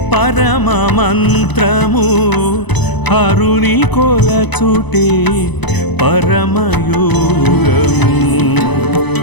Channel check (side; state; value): right; late; 0.99 ms